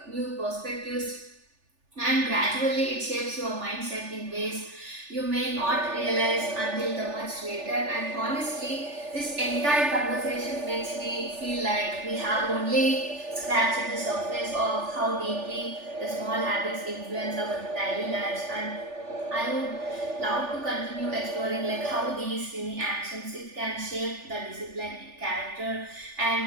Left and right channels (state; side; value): late; left; 3.4 ms